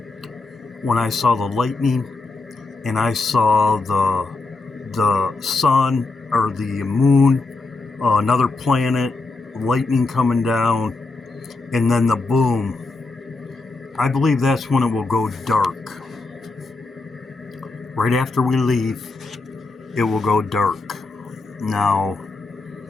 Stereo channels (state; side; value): quieter; right; 3.6 dB